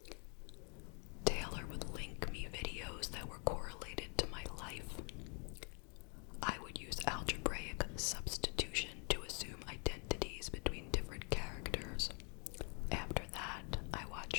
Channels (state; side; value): quieter; right; 36.6 dB